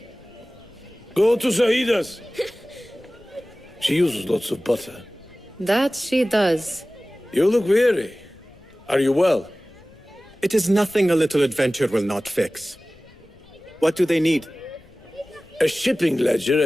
Go to Saida's. She uses lots of butter. That she does. You look weary. Are you well? It is nothing a little adventure will not fix. What do they need? A shipping ledger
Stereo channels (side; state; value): left; noise; rumble, 26 dB below the sound